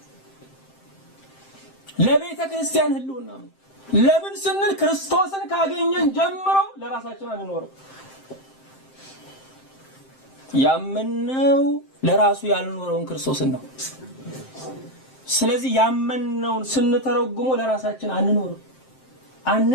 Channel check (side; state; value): right; late; 7.6 ms